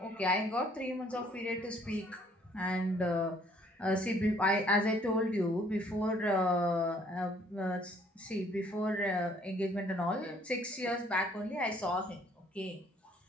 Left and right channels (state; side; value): normal; both; correlation 0.61